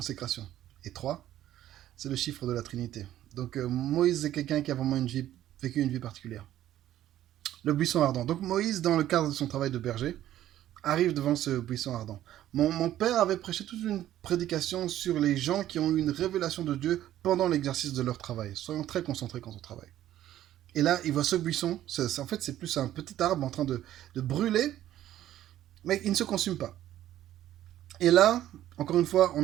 Et 3, c'est le chiffre de la Trinité. Donc Moïse est quelqu'un qui a vraiment vécu une vie particulière. Le buisson ardent. Donc Moïse, dans le cadre de son travail de berger, arrive devant ce buisson ardent. Mon père avait prêché toute une prédication sur les gens qui ont eu une révélation de Dieu pendant l'exercice de leur travail. Soyons très concentrés quand on travaille. Et là, il voit ce buisson. En fait, c'est plus un petit arbre en train de brûler, mais il ne se consume pas. Et là, encore une fois,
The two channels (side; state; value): left; quieter; 12.7 dB